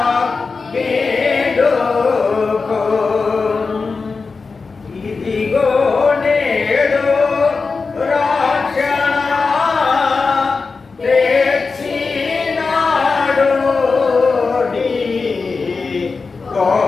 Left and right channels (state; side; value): quieter; right; 4.5 dB